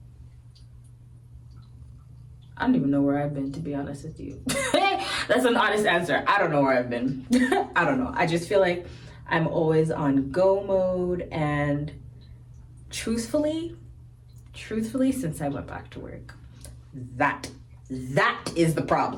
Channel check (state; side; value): identical; both; correlation 1.00